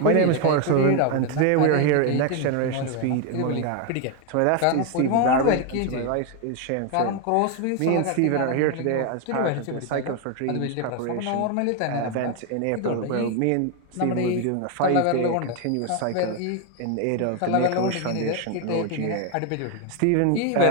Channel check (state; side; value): different; both; correlation 0.01